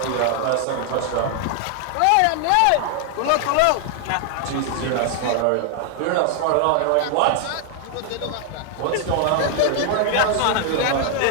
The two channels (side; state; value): both; different; correlation 0.00